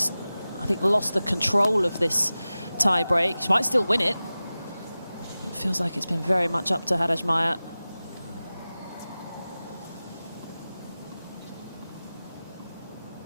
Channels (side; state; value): both; inverted; correlation -0.96